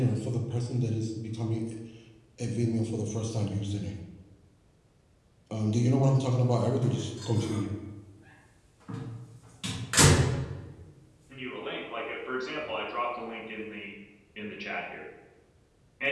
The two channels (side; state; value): both; identical; correlation 1.00